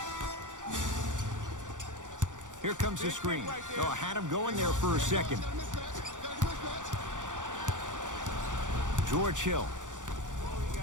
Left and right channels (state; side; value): late; left; 0.87 ms